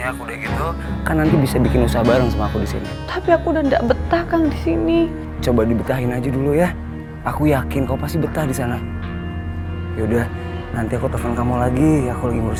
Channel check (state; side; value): identical; both; correlation 1.00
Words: udah gitu kan nanti bisa bikin usaha bareng sama aku di sini. Tapi aku udah nggak betah Kang di sini. Coba dibetahin aja dulu ya. Aku yakin kau pasti betah di sana. Yaudah, nanti aku telepon kamu lagi. Aku lagi